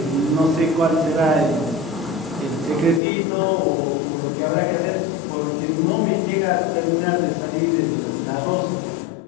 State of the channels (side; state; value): right; drops out; at 3.0 s